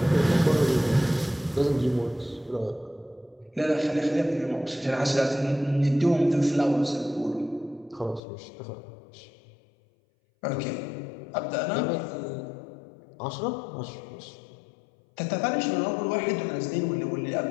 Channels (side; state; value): right; drops out; at 8.2 s